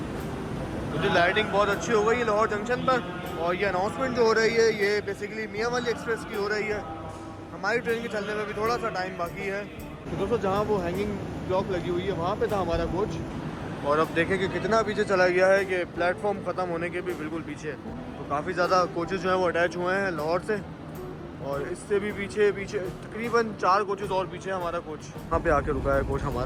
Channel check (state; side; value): identical; both; correlation 1.00